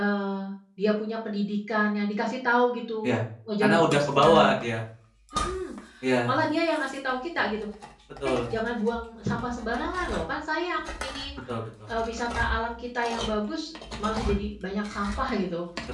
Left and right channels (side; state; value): both; identical; correlation 1.00